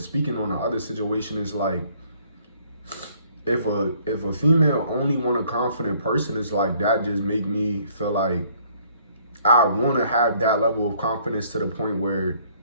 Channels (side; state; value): both; inverted; correlation -0.62